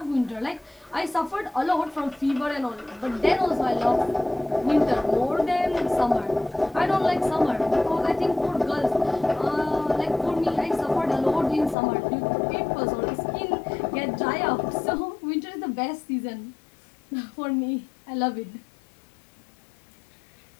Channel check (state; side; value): drops out; right; at 11.8 s